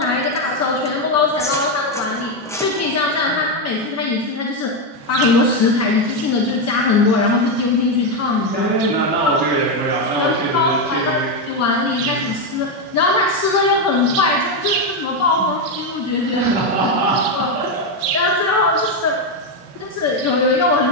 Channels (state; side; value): normal; both; correlation 0.06